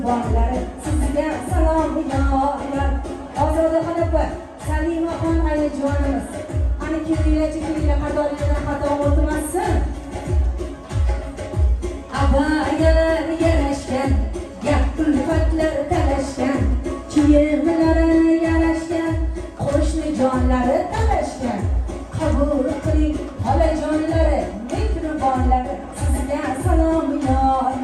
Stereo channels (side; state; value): both; identical; correlation 1.00